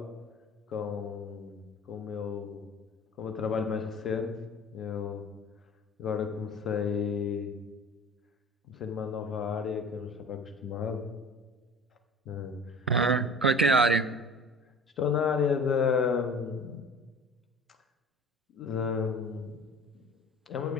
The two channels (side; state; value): both; normal; correlation 0.41